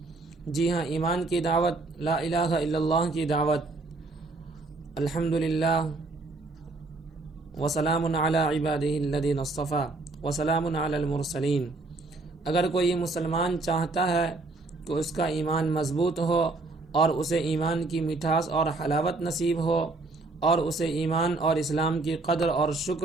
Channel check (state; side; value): quieter; left; 3.4 dB